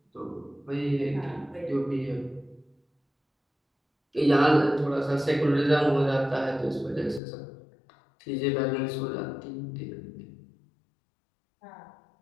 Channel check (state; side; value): drops out; right; at 7.2 s